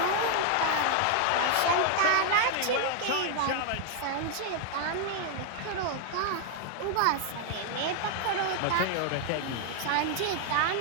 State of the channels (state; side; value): different; both; correlation 0.00